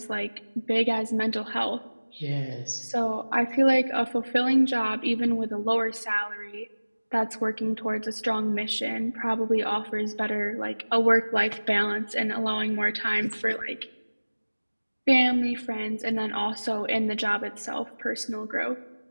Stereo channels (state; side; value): inverted; both; correlation -1.00